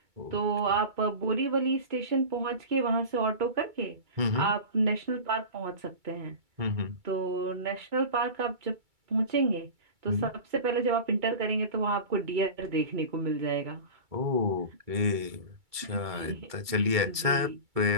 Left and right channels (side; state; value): left; late; 2.3 ms